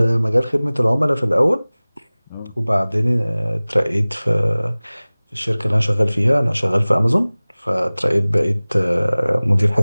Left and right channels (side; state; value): both; inverted; correlation -0.99